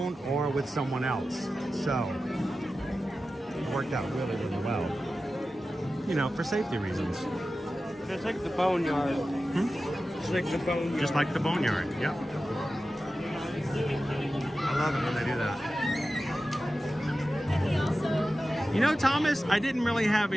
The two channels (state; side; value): normal; both; correlation 0.94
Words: or with someone else. So it worked out really, really well. You know, for safety reasons. It's like the boneyard. It's like the boneyard. Just like the boneyard, yep. I love it when they do that. You know, Thomas, I didn't really have